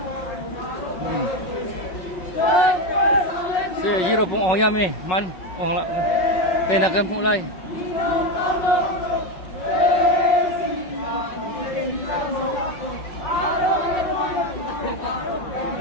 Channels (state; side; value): late; right; 5.4 ms